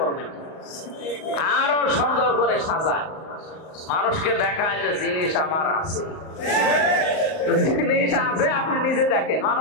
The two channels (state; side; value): late; right; 38 ms